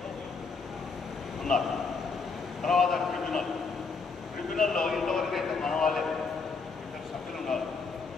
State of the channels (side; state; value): right; quieter; 4.7 dB